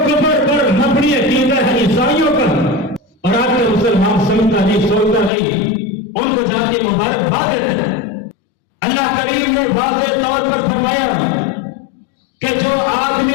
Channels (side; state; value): right; drops out; at 5.3 s